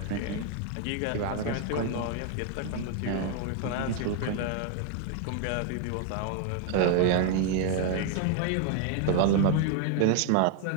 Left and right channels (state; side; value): different; both; correlation 0.00